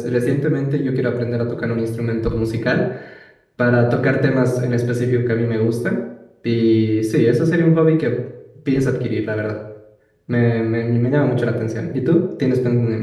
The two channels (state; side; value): identical; both; correlation 1.00